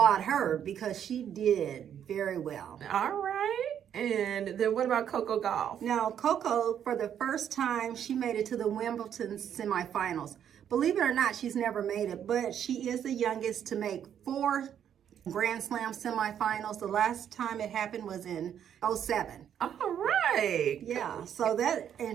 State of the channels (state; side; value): quieter; left; 9.3 dB